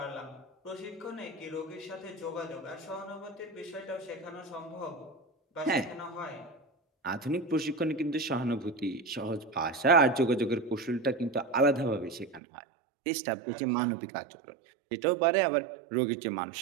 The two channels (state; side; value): drops out; left; at 12.4 s